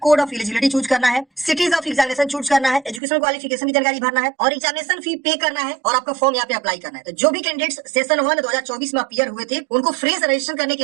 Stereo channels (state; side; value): drops out; left; at 3.0 s